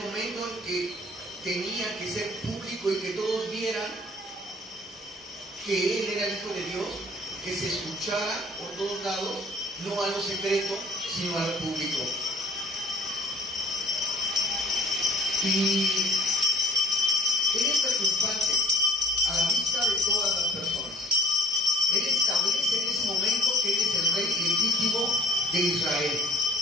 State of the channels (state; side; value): normal; both; correlation 0.53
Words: momento en que tenía que ser público y que todos vieran que Él era el Hijo de Dios, que se escuchara por todos lados, no a lo secreto, sino a lo público. Y Él es triunfante a la vista de todas las personas. Él establece en ese momento que Él es el Rey legítimo de Israel.